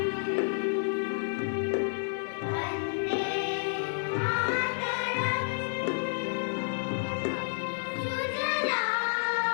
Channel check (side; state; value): right; silent; digital silence